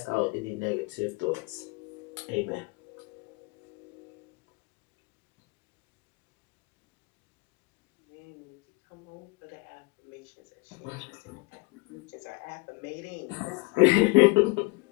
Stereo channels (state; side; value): quieter; right; 25.2 dB